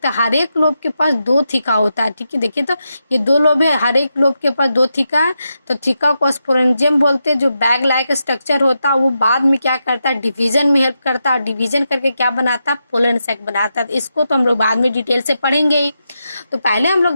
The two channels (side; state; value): both; inverted; correlation -0.86